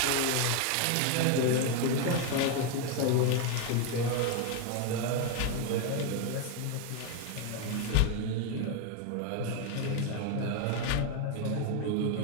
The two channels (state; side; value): different; both; correlation 0.01